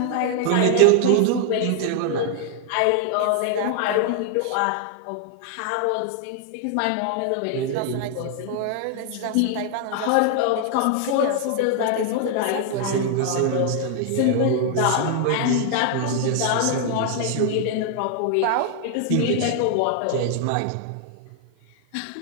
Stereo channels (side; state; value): both; different; correlation 0.00